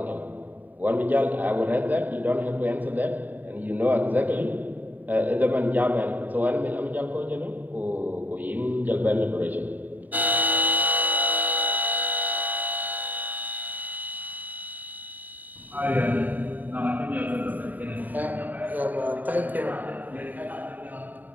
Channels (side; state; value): left; late; 0.084 ms